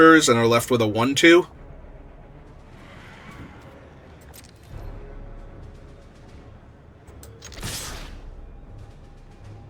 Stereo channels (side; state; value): both; identical; correlation 1.00